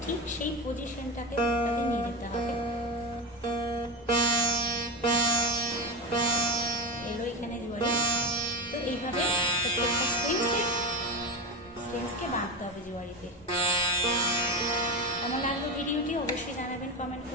ঠিক সেই পজিশনটাকে নিয়ে যেতে হবে। এলো এখানে জোয়ারি। তো এইভাবে প্রত্যেকটা স্ট্রিংসকে বাঁধতে হবে জোয়ারিতে। কেমন লাগলো ভিডিওটি অবশ্যই জানাবেন কমেন্ট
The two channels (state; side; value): normal; both; correlation 0.19